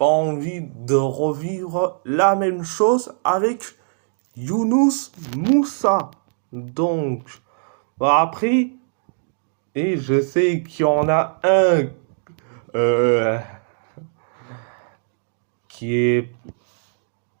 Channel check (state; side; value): silent; left; digital silence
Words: envie de revivre la même chose avec Younous Moussa. Donc, bah après, et je sais qu'il y en a un euh, qui est